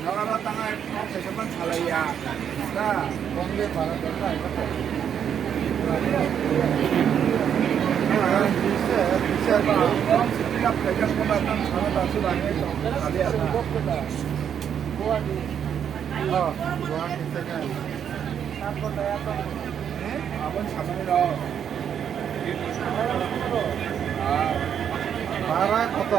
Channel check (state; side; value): quieter; left; 8.5 dB